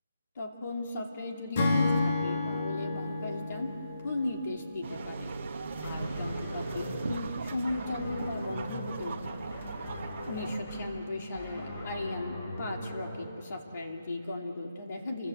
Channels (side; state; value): both; inverted; correlation -0.83